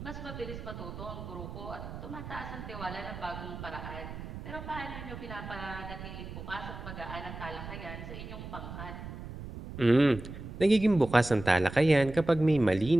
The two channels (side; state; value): right; noise; rumble, 10 dB below the sound